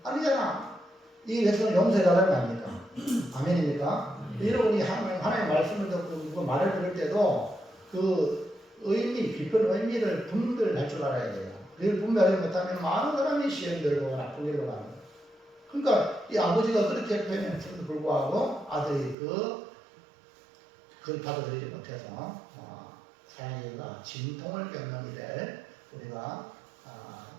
아니잖아. 이 백성을 용서해달라는 거 아닙니까? 아멘입니까? 여러분이 하나님의 말씀을 듣고 말을 들을 때도 그 깊은 의미를 분별할 줄 알아야 돼요. 그걸 분별하지 못하면 많은 사람이 시험 들고 나쁜 길로 가는 거예요. 그러니까 이 아버지가 그렇게 표현했음에도 불구하고 아들이 그걸 받아들이지 못해서 사랑이가 진통을 겪는 일을 우리가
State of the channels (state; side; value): drops out; left; at 19.2 s